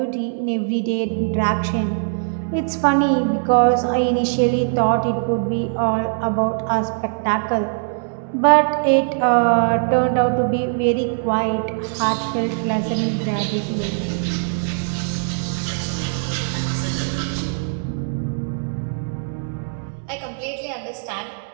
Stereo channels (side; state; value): left; silent; digital silence